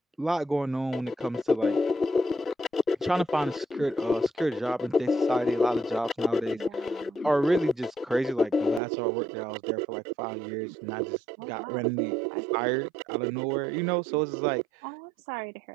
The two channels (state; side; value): drops out; left; at 8.8 s